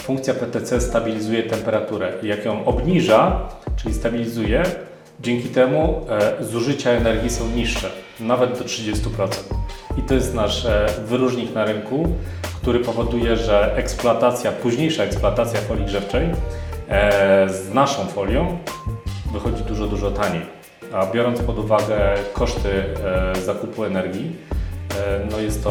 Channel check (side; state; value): both; identical; correlation 1.00